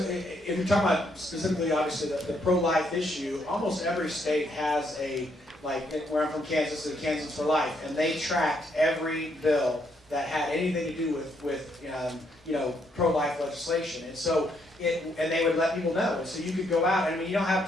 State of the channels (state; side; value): normal; both; correlation 0.73